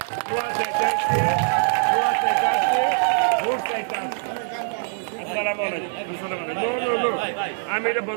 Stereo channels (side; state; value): left; silent; digital silence